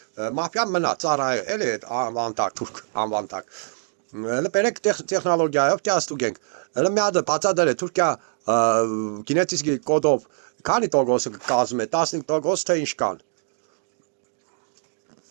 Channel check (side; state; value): left; silent; digital silence